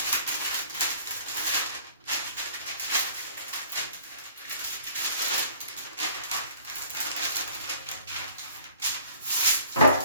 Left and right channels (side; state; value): both; inverted; correlation -0.54